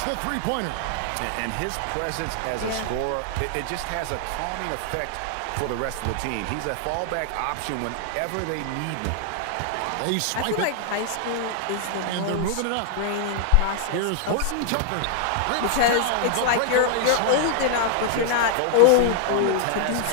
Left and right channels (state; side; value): different; both; correlation -0.01